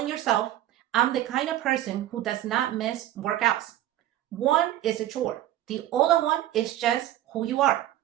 yourself, I'm the kind of person who does not miss workouts. One is a chore. The other one is just who you are.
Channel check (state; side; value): quieter; left; 13.3 dB